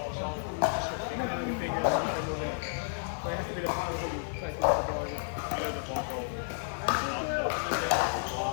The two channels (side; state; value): right; silent; 57 dB below the other